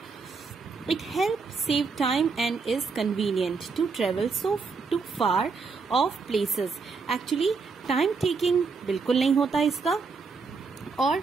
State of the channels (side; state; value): left; quieter; 4.7 dB